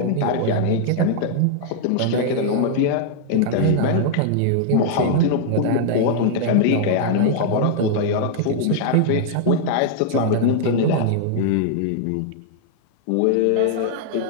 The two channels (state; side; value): different; both; correlation -0.01